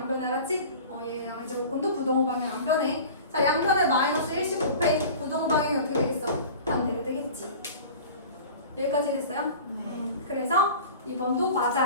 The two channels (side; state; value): both; inverted; correlation -0.39